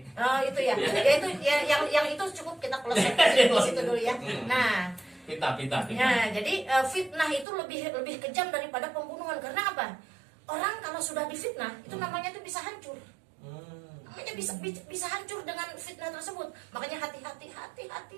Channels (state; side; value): drops out; left; at 7.5 s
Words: Oh itu ya. Ya itu ya, yang itu cukup kita close di situ dulu ya. Nah, Pita. nah jadi fitnah itu lebih kejam daripada pembunuhan karena apa? Orang kalau sudah difitnah itu namanya tuh bisa hancur. Namanya bisa hancur dengan fitnah tersebut. Makanya hati-hati